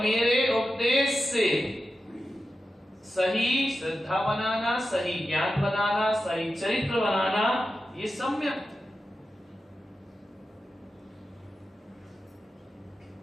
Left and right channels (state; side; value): normal; both; correlation 0.91